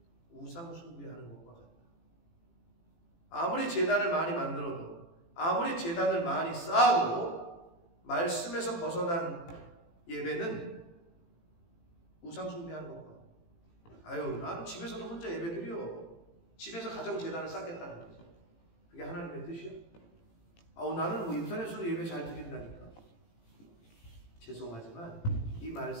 우상 숭배하는 것과 같다. 아무리 제단을 많이 만들어도, 아무리 제단을 많이 쌓아도 말씀에서 벗어난 예배는 우상 숭배하는 것과 같다. 아유, 난 집에서도 혼자 예배 드려. 집에서 가정 제단을 쌓겠다는 거지. 그게 하나님의 뜻이야? 나는 인터넷으로 예배 잘 드린다니까. 죄송하지만 이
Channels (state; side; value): late; right; 18 ms